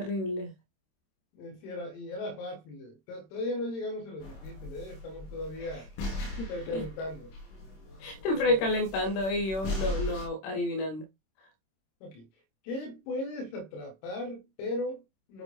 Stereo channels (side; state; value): right; late; 26 ms